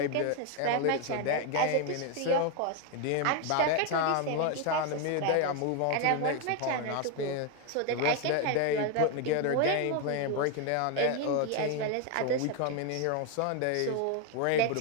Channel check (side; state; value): both; different; correlation 0.01